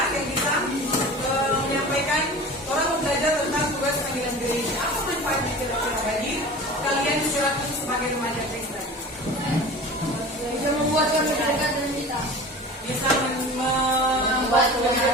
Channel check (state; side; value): normal; both; correlation 0.37